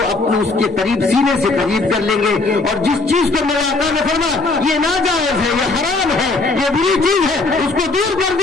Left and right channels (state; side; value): quieter; right; 3.5 dB